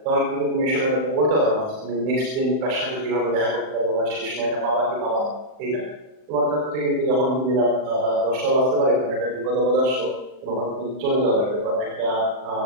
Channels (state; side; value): late; left; 39 ms